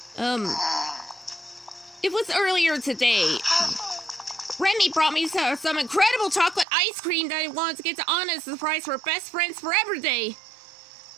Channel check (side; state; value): left; drops out; at 6.7 s